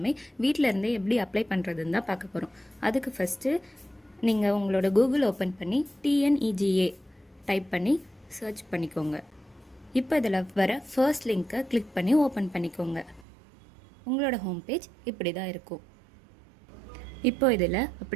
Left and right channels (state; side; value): drops out; left; at 13.2 s